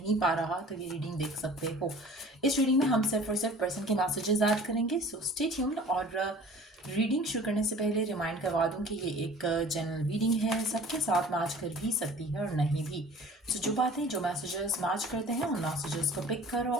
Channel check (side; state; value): both; normal; correlation 0.46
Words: पा रहा। तो ये रीडिंग देख सकते हो। इस रीडिंग में हम सिर्फ और सिर्फ पर्सन के मैसेजेस ऐड करेंगे, सो स्टे ट्यून्ड। और रीडिंग शुरू करने से पहले रिमाइंड करवा दूं कि ये एक जनरल रीडिंग है, सबके साथ मैच कर भी सकती है और नहीं भी। तो जो बातें जो मैसेजेस मैच करते हैं उन मैसेजेस को पिक करो